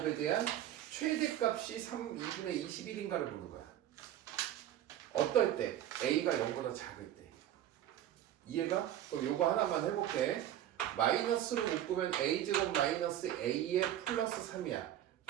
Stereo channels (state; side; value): quieter; left; 11.9 dB